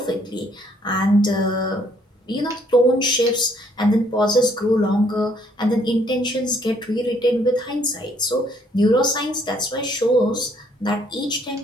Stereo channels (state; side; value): normal; both; correlation 0.66